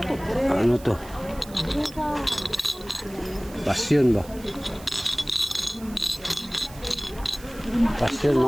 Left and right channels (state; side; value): noise; right; hiss, 20 dB below the sound